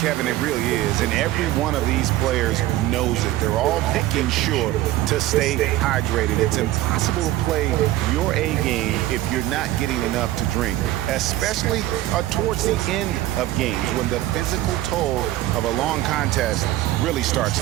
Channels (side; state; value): left; quieter; 15.2 dB